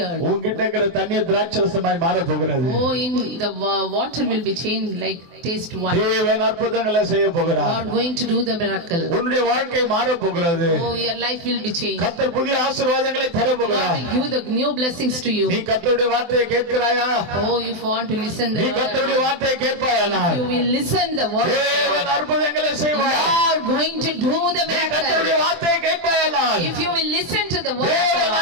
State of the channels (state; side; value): late; left; 24 ms